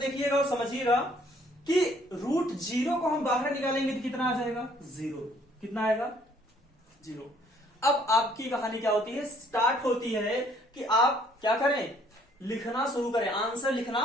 और समझिएगा कि √0 को हम बाहर निकालेंगे तो कितना आ जाएगा 0। कितना आएगा 0। अब आपकी कहानी क्या होती है, स्टार्ट होती है कि आप क्या करें, लिखना शुरू करें, आंसर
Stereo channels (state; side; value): normal; both; correlation 0.62